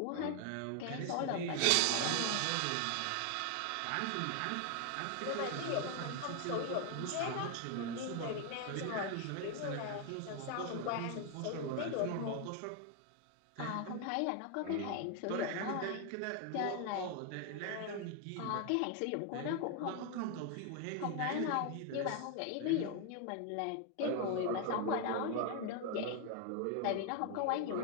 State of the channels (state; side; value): different; both; correlation 0.00